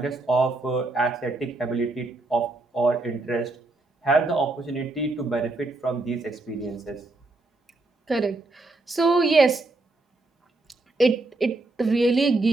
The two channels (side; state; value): left; quieter; 3.1 dB